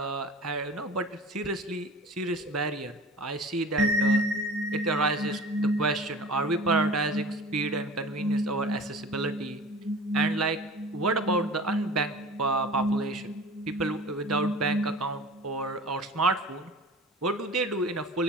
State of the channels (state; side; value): normal; both; correlation 0.39